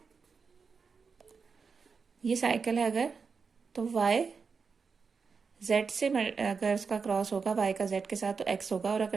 ये साइकिल है अगर, तो वाई जेड से अगर उसका क्रॉस होगा वाई का जेड के साथ तो एक्स होगा, और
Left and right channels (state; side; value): quieter; left; 5.3 dB